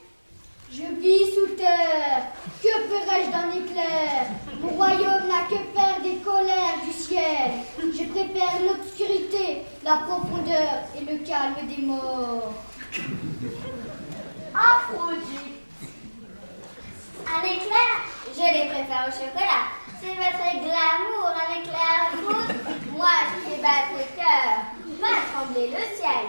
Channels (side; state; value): both; inverted; correlation -1.00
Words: Je vis sous terre. Que ferais-je d'un éclair? Mon royaume n'a que faire des colères du ciel. Je préfère l'obscurité, la profondeur et le calme des morts. Aphrodite. Un éclair, je les préfère au chocolat. C'est votre glamour, un éclair à foudre. Moi, je fais battre le cœur, va trembler le ciel.